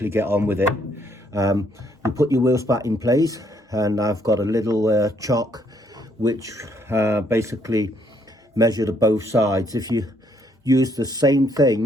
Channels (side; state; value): both; normal; correlation 0.69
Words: get on with it. You put your wheel spat in place, and I've got a little chock which basically measured both sides. If you use the same